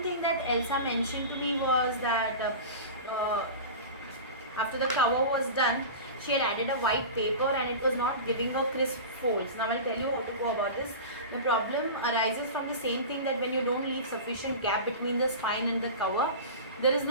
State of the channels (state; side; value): inverted; both; correlation -0.30